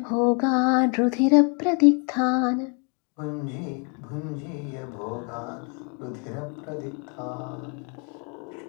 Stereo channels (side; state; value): right; quieter; 36.9 dB